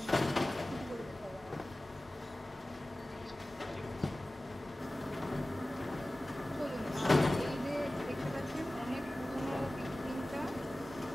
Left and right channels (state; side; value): normal; both; correlation 0.97